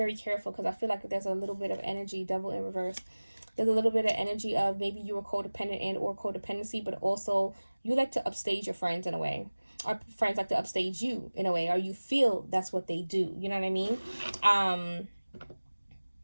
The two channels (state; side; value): inverted; both; correlation -1.00